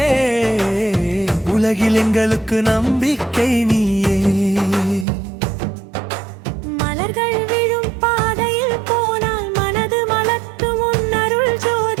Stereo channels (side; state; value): left; drops out; at 5.1 s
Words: உலகில் எங்களுக்கு நம்பிக்கை நீயே. மலர்கள் விழும் பாதையில் போனால் மனது மலர்த்தும் உன் அருள்